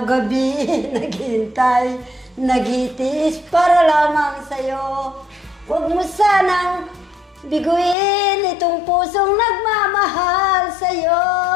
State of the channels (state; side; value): drops out; right; at 8.0 s